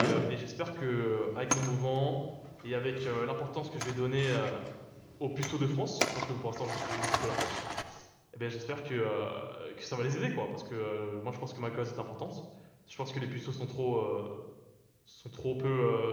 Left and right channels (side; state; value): both; identical; correlation 1.00